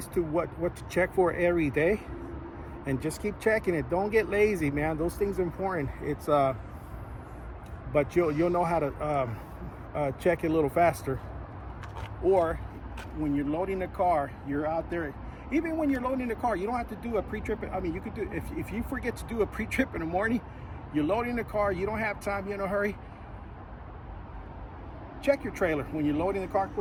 to what to check for every day, and just keep checking it. Don't get lazy, man. Those things are important. It's but you'll know how to check it a little faster. Or when you're loading the car, you're out there. Even when you're loading the car, you don't have to do a pre-trip. I mean, you could do, if you forget to do a pre-trip in the morning, you're loading the car, you don't have time, you're in a hurry. Check your trailer when you're loading the car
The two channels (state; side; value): identical; both; correlation 1.00